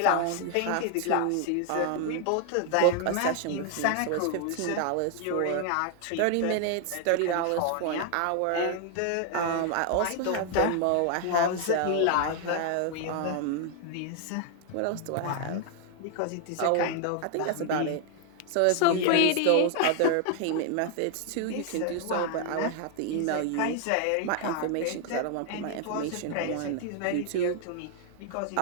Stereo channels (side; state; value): both; different; correlation 0.00